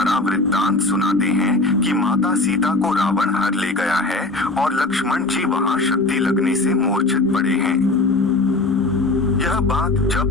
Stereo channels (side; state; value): right; quieter; 3.0 dB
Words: वृत्तांत सुनाते हैं कि माता सीता को रावण हर ले गया है और लक्ष्मण जी वहां शक्ति लगने से मूर्छित पड़े हैं। यह बात